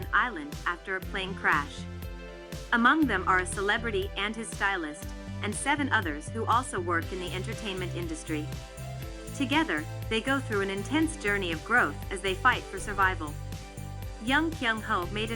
island after a plane crash. Among them are a celebrity and his stylist, and 7 others who also work in the entertainment industry. Together, they go through an intense journey of growth as they fight for survival. Young Kyung-Ho made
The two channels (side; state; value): both; identical; correlation 1.00